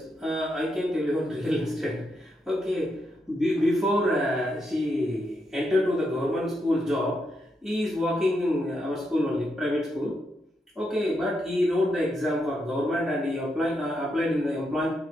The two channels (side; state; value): both; normal; correlation 0.82